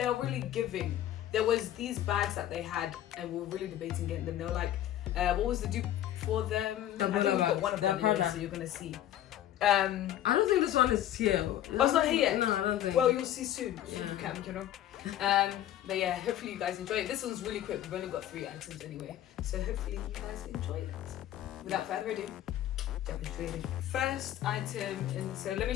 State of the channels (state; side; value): quieter; right; 12.3 dB